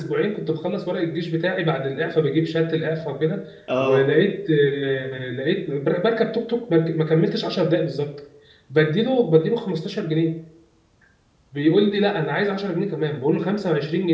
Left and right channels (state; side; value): identical; both; correlation 1.00